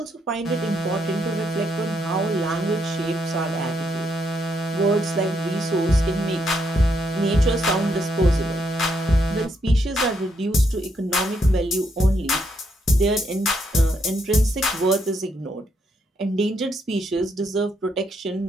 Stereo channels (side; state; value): both; normal; correlation 0.76